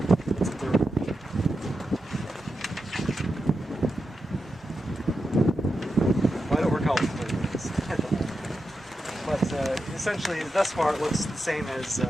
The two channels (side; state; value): both; normal; correlation 0.89